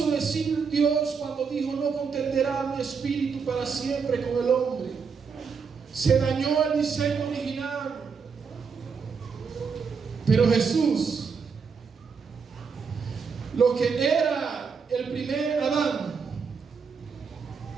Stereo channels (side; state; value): left; quieter; 5.7 dB